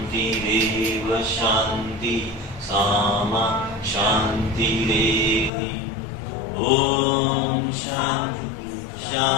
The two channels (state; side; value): drops out; right; at 5.5 s